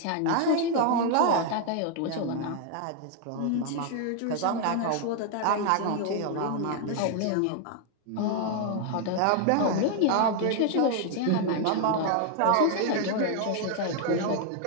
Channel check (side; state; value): both; different; correlation 0.00